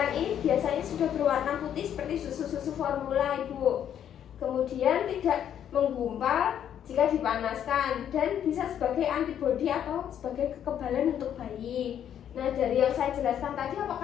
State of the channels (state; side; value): quieter; right; 9.7 dB